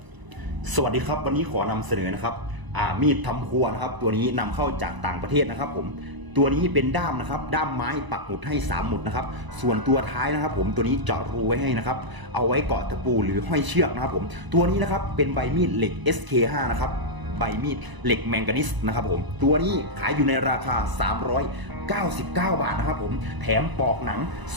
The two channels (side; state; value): left; late; 1.0 ms